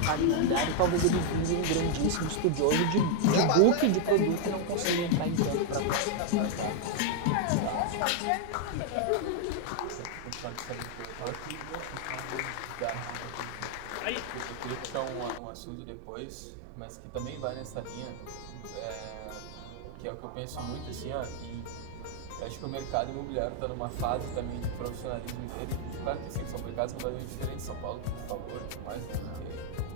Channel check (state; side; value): different; both; correlation 0.00